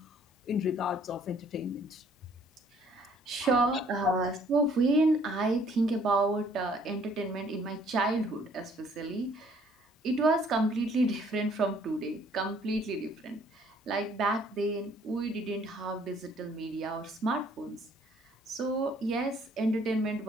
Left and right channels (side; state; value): both; normal; correlation 0.61